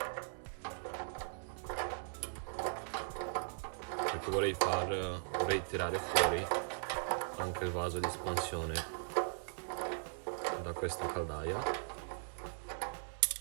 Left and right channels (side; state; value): left; silent; digital silence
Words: perché vorrei tirare fuori anche il vaso di espansione da questa caldaia.